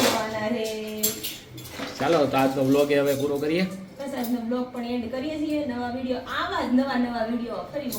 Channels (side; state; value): both; identical; correlation 1.00